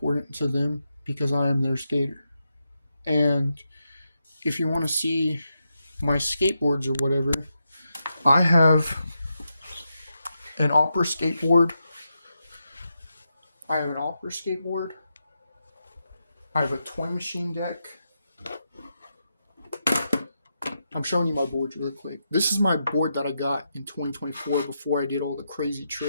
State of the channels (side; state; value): both; inverted; correlation -0.85